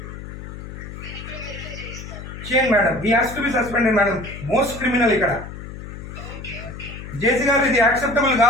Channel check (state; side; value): noise; left; hum, 11 dB below the sound